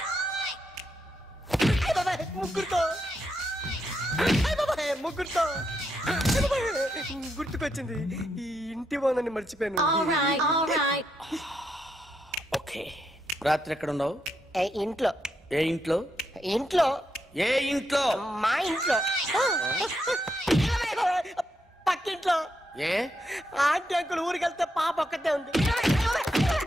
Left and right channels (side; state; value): both; normal; correlation 0.81